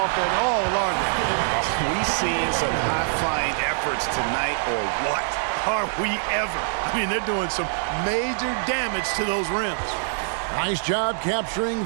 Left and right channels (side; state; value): left; silent; digital silence